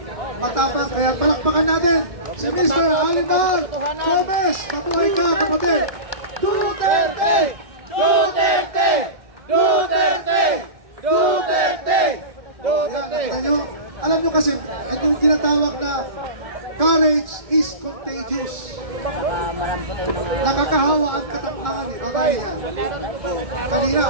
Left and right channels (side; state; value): left; late; 1.7 ms